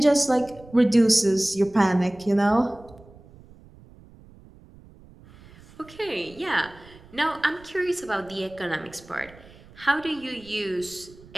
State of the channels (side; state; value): right; noise; rumble, 23 dB below the sound